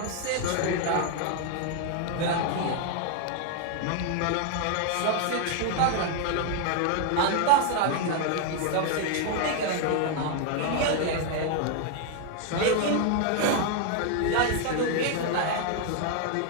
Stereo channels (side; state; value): both; different; correlation 0.00